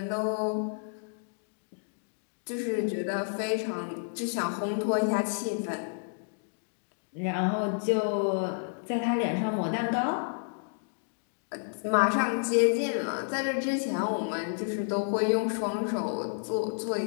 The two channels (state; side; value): silent; right; digital silence